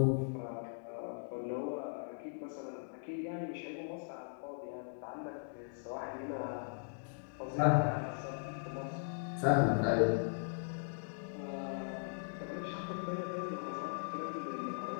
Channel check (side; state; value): right; silent; digital silence